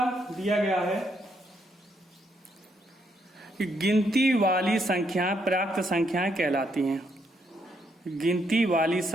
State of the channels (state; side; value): normal; both; correlation 0.75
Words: दिया गया है कि गिनती वाली संख्याएं प्राकृत संख्याएं कहलाती हैं। गिनती वाली